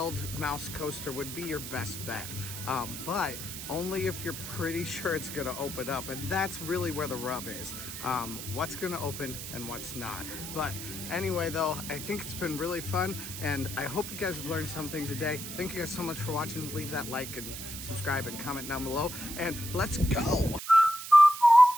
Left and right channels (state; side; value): noise; right; hiss, 8 dB below the sound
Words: Mouse coaster would be your best bet, but only if you're pretty sure it's gonna open up, and that's really where the rub is. What's gonna open and what's not. But anyway though, I think it's been really fun, and I hope you guys have learned something today. Thank you guys so much for watching. Leave that like and subscribe and comment down below, and let's go.